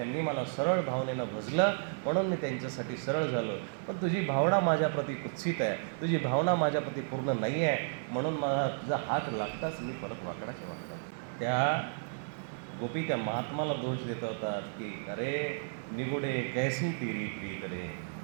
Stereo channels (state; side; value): silent; left; 56 dB below the other